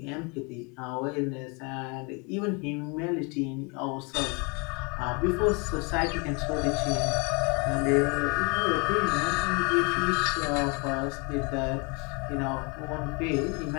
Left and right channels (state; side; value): quieter; right; 31.5 dB